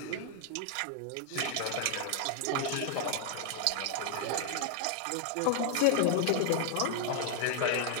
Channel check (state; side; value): different; both; correlation 0.00